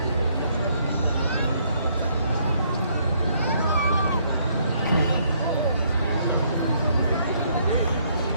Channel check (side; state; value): both; inverted; correlation -0.69